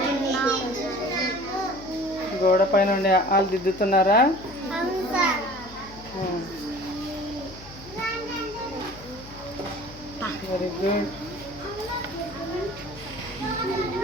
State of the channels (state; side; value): noise; left; hum, 18 dB below the sound